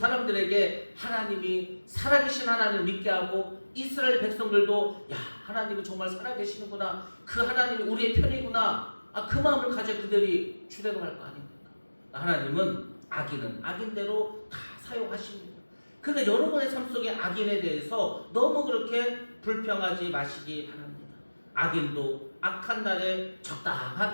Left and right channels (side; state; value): both; inverted; correlation -1.00